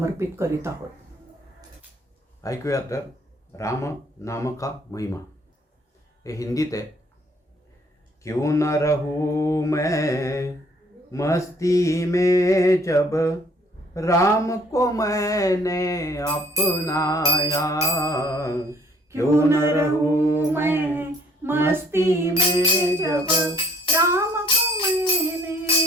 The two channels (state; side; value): normal; both; correlation 0.61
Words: करीत आहोत. ऐकूया तर राम नाम का महिमा. हे हिंदीत आहे. क्यों न रहूं मैं मस्ती में जब राम को मैंने अपनाया. क्यों न रहूं मैं मस्ती में जब राम को मैंने